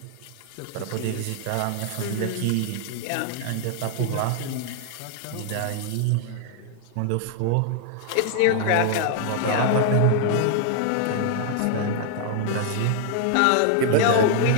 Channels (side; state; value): both; different; correlation 0.00